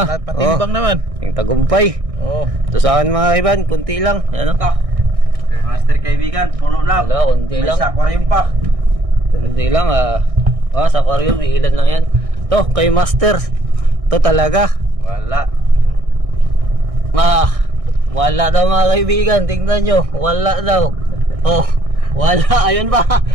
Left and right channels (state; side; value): late; left; 1.6 ms